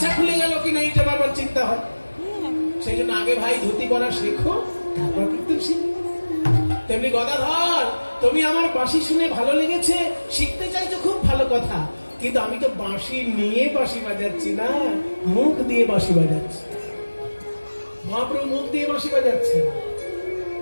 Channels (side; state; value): both; inverted; correlation -1.00